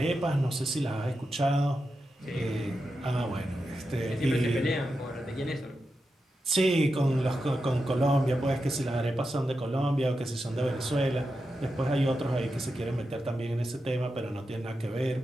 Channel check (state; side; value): normal; both; correlation 0.89